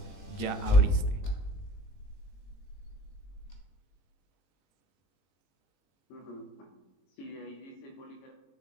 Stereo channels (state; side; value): late; right; 21 ms